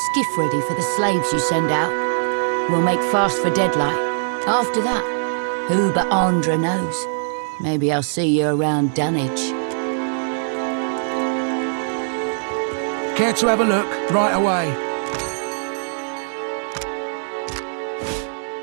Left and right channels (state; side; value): silent; left; 57 dB below the other